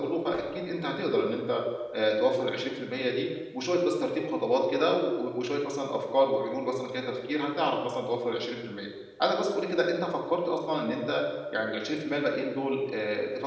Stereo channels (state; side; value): identical; both; correlation 1.00